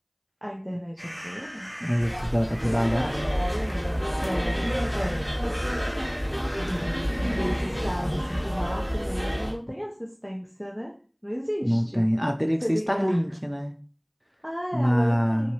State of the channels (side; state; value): both; identical; correlation 1.00